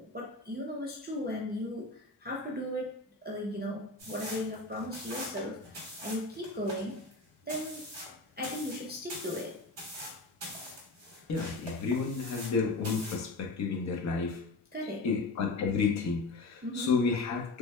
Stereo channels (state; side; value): quieter; right; 3.2 dB